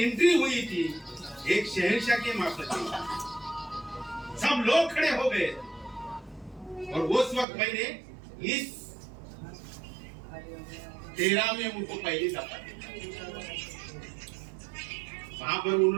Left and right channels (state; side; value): drops out; left; at 7.5 s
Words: हुई थी एक शहंशाह के माफत, सब लोग खड़े हो गए। और उस वक्त मैंने इस 13 में उनको पहली दफा वहां पर